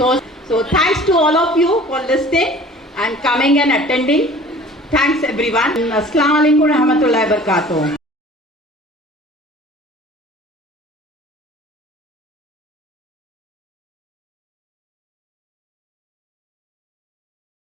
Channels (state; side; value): normal; both; correlation 0.46